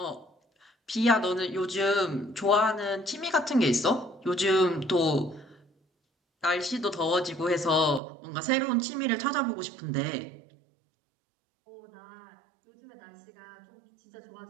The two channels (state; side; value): drops out; left; at 8.0 s